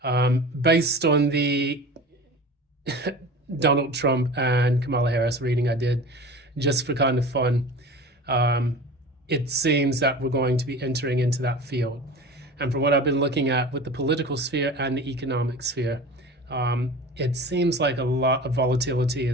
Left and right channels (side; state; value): both; normal; correlation 0.36